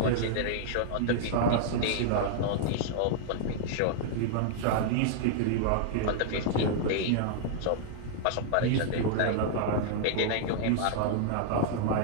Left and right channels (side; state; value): both; different; correlation -0.01